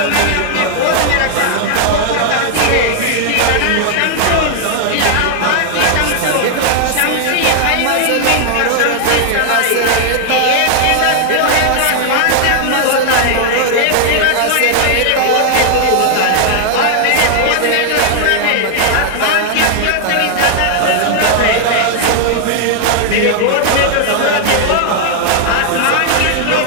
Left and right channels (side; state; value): both; different; correlation 0.00